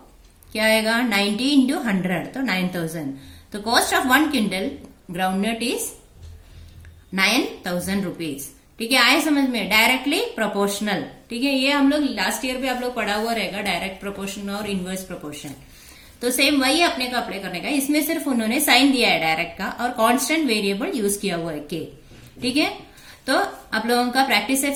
क्या आएगा 90 इंटू 100, तो 9000। तो cost of 1 quintal ground nut is 9000 rupees, ठीक है, आए समझ में, डायरेक्टली प्रोपोर्शनल, ठीक है। ये हम लोग लास्ट ईयर भी आप लोग पढ़ा हुआ रहेगा, डायरेक्ट प्रोपोर्शन और इनवर्स प्रोपोर्शन। तो सेम वही अपने को अप्लाई करने का, इसमें सिर्फ उन्होंने साइन दिया है डायरेक्ट का, और कांस्टेंट वेरिएबल यूज किया हुआ है k, ठीक है। तो आप लोगों का प्रैक्टिस सेट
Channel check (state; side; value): identical; both; correlation 1.00